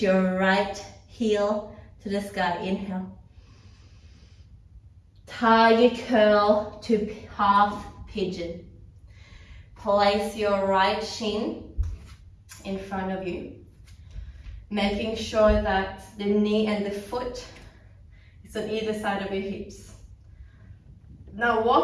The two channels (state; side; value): identical; both; correlation 1.00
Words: your right heel to the sky. Inhale. Tiger curl to half pigeon. Place your right shin in front of you, making sure that the knee and the foot is on either side of your hips. Now